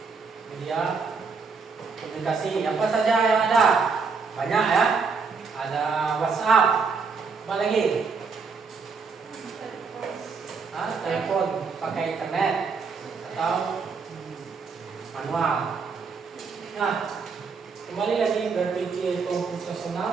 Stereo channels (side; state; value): left; quieter; 5.0 dB